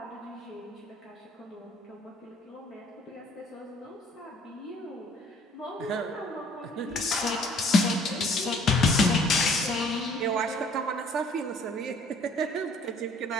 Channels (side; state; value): both; normal; correlation 0.56